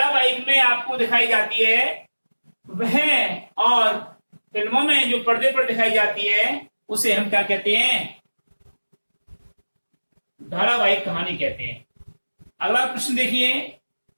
में आपको दिखाई जाती है वह, और फिल्मों में जो पर्दे पर दिखाई जाती है उसे हम क्या कहते हैं? धारावाहिक कहानी कहते हैं। अगला प्रश्न देखिए,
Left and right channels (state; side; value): inverted; both; correlation -1.00